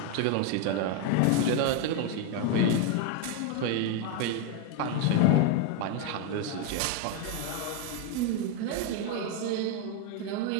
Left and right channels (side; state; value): both; different; correlation 0.01